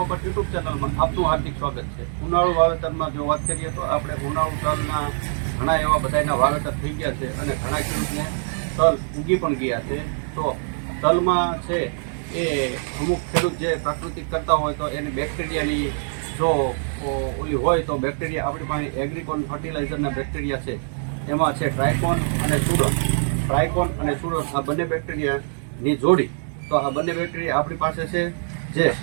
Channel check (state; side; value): silent; left; digital silence